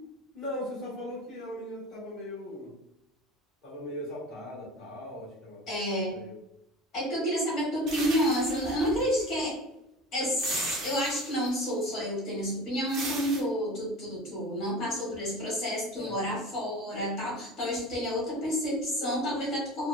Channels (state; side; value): normal; both; correlation 0.35